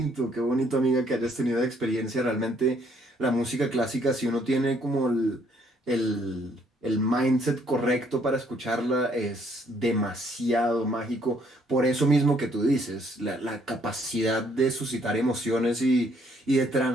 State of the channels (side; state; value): both; normal; correlation 0.66